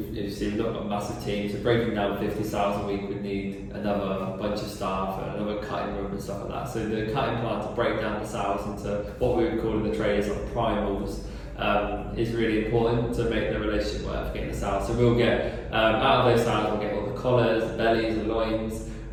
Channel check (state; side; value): identical; both; correlation 1.00